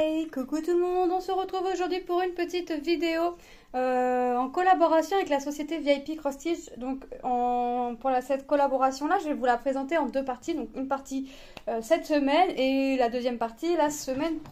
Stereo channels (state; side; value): identical; both; correlation 1.00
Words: coucou tout le monde, on se retrouve aujourd'hui pour une petite vidéo en collaboration avec la société VIP Cross Stitch. Donc cette collaboration là, je vais vous la présenter en deux parties. Donc une partie cette semaine et la deuxième partie la semaine